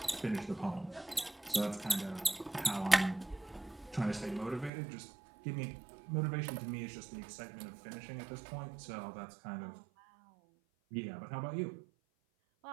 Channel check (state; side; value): drops out; left; at 4.7 s